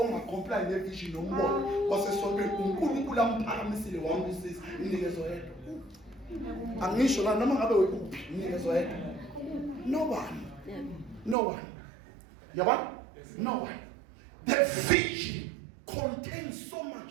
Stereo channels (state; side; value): drops out; left; at 11.4 s